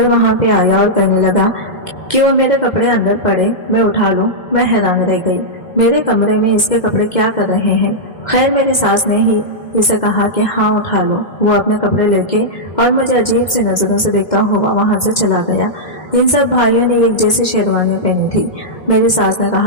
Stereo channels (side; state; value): right; late; 2.1 ms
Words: वहां पे आया और कहने लगा कि वो मेरे कपड़े अंदर पड़े, मैं उठा लूं, मैं हैरान रह गई। मेरे कमरे में इसके कपड़े क्या कर रहे हैं? खैर मेरी सास ने ही इसे कहा कि हाँ उठा लो। वो अपने कपड़े लेके और मुझे अजीब सी नजरों से देखता हुआ वहां से चला गया। इन सब भाइयों ने एक जैसी शेरवानियां पहनी थी। मेरी सास ने